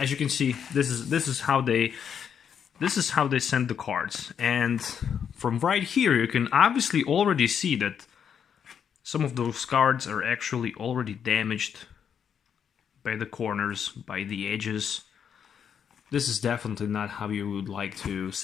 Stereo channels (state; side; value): quieter; right; 7.8 dB